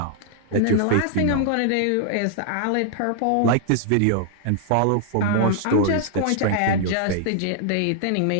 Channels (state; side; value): different; both; correlation -0.01